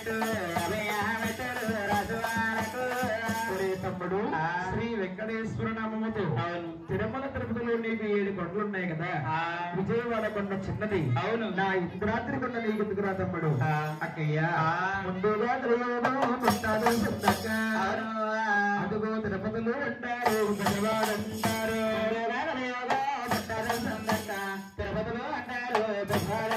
తమ్ముడు శ్రీ వెంకటేశ్వర నామముతో తిరుమల తిరుపతిలో నీకు 7 కొండలు ఉన్నాయి కదా విజయవాడ కొండ చిన్నది అవును నా ఇంద్రాద్రి కొండ నీకు ఎందుకురా తమ్ముడు అక్కయ్య ముందుగా అదుగో తిరుపతిలో అంటారు విజయవాడ అంటారు తిరుపతిలో అంటారు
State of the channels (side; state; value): both; identical; correlation 1.00